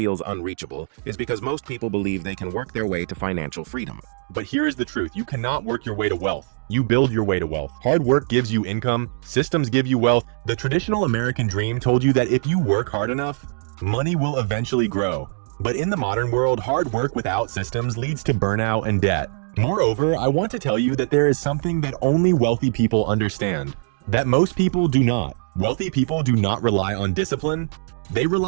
unreachable is because most people believe they can work their way to financial freedom. But here is the truth. You cannot work your way to wealth. You build your way to wealth. Hard work gives you income. Systems give you wealth. The traditional American dream told you that if you work hard enough, money will eventually grow. But in the modern world, hard work without systems leads to burnout and debt. Moreover, I want to tell you that there is something that only wealthy people understand, that most people do not. Wealthy people do not rely on discipline. They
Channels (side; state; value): left; silent; digital silence